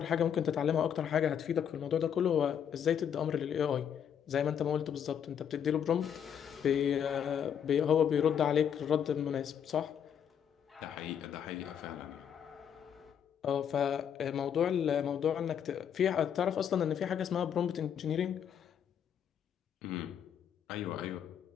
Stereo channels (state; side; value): quieter; right; 8.5 dB